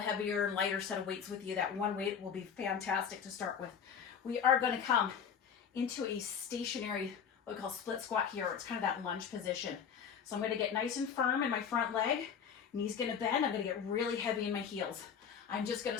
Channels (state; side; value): quieter; right; 7.3 dB